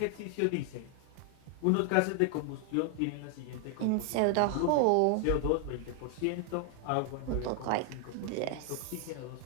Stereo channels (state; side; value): different; both; correlation 0.00